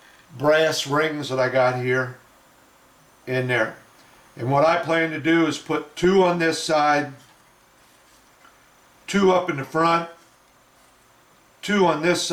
brass rings that I got here in there. And what I plan to do is put 2 on this side, 2 up in the front, 2 on this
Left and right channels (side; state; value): both; identical; correlation 1.00